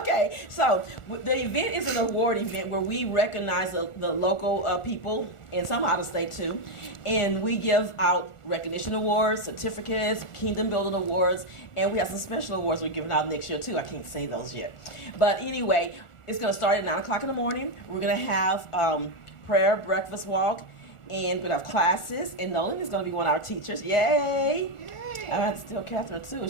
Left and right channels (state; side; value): late; right; 1.4 ms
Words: so the event is an award event where we recognize the local people and some out of state too, and we give out recognition awards, certificates, kingdom building awards, and we have some special awards we're giving out next year too. I can't say those yet, but anyway, it's going to start at 9 o'clock in the morning. We're going to have prayer, breakfast walk, and we're going to have classes, and Nolan is going to be one of our teachers. Yay! I have to tell Catherine too.